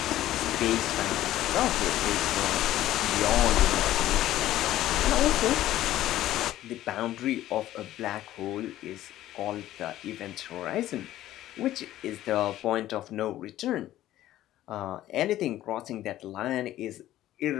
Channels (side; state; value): right; quieter; 14.0 dB